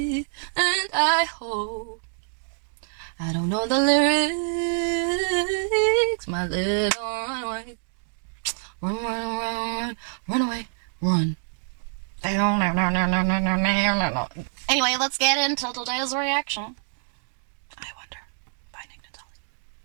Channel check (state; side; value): silent; left; digital silence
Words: and I hope I don't know the lyrics. My little runaway, run away, run. Anyway, let's get into today's reaction. I Wonder by Nick Nittoli.